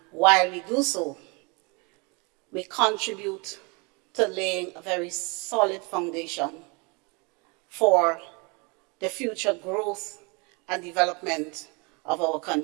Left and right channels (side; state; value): left; quieter; 30.1 dB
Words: while we do so, we contribute to laying a very solid foundation for the future growth and development of our